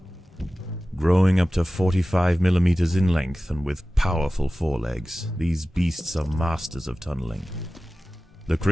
Growing up to 45 millimeters in length and with powerful forelegs, these beasts are masters of tunneling. The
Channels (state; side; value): normal; both; correlation 0.96